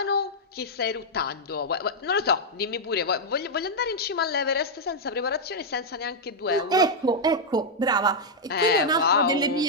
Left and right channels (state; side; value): normal; both; correlation -0.04